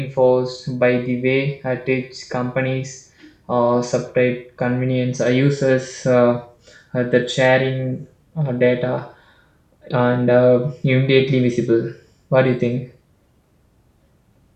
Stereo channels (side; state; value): both; identical; correlation 1.00